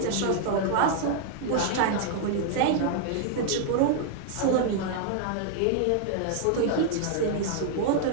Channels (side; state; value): both; different; correlation 0.00